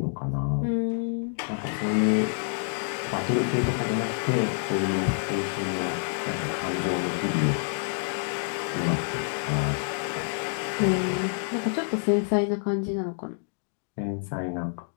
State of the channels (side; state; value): right; silent; digital silence